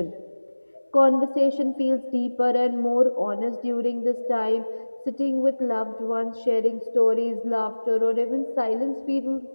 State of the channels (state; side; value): inverted; both; correlation -1.00